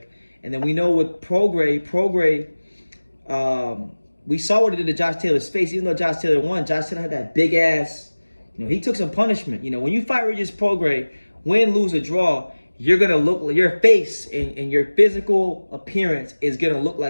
and then we know with Prograis, we saw what he did to Josh Taylor's face. Even though Josh Taylor won, Josh Taylor had that big ass. He took some punishment. When you fight Regis Prograis, win, lose, or draw, you're gonna look, your face and your physical appearance is gonna look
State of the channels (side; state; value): both; inverted; correlation -1.00